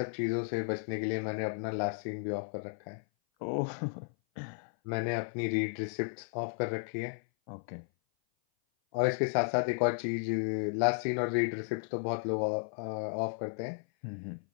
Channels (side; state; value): right; silent; 55 dB below the other